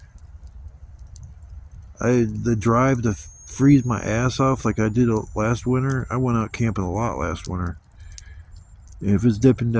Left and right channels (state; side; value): identical; both; correlation 1.00